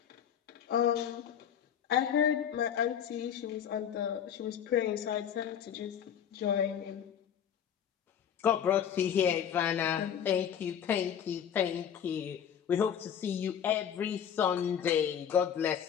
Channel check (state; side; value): quieter; right; 8.8 dB